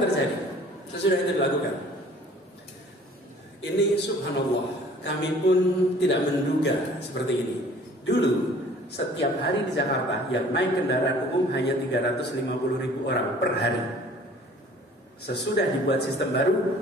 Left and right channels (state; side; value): normal; both; correlation 0.51